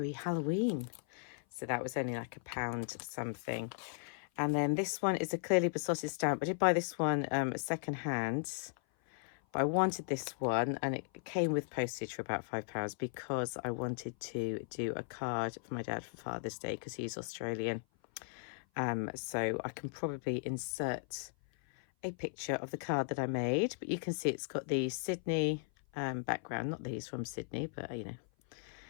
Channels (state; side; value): silent; right; 53 dB below the other